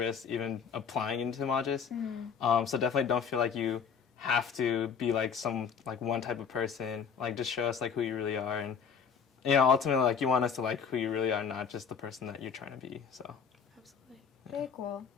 even applying into Magis. So definitely don't feel like you have to be like one type of person. Like, just show us like who you really are, and you know, ultimately like you want us to like who you really are, not just the person that you're trying to be. So absolutely. Very cool.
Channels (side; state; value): right; quieter; 6.7 dB